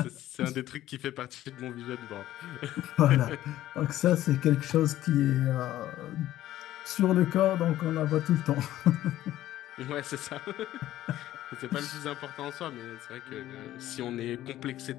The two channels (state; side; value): quieter; right; 13.9 dB